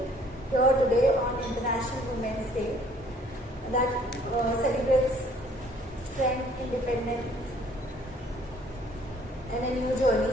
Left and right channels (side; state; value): both; normal; correlation 0.58